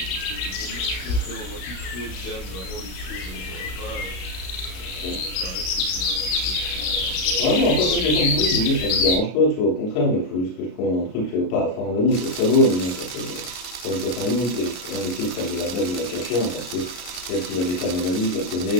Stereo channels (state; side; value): late; right; 33 ms